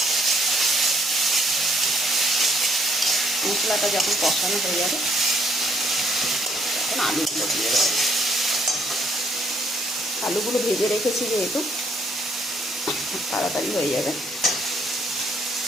মশলাটা যখন কষানো হয়ে যাবে, তখন আলুগুলো দিয়ে দেবো। আলুগুলো ভেজে রেখেছি যেহেতু, তাড়াতাড়ি হয়ে যাবে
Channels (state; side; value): normal; both; correlation 0.67